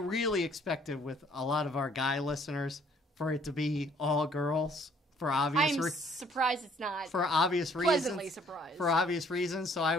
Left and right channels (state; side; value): normal; both; correlation 0.61